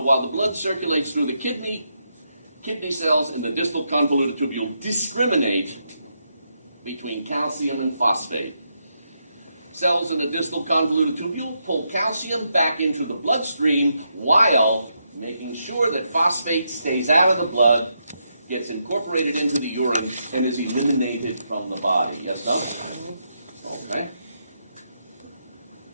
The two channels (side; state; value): both; inverted; correlation -0.81